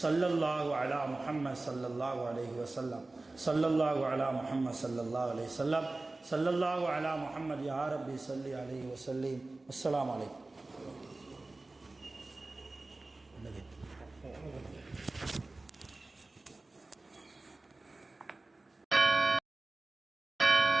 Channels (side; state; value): left; quieter; 3.1 dB